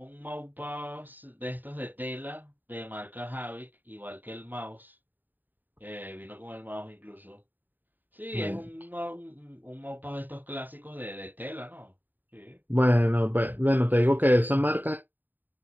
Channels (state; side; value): late; left; 0.089 ms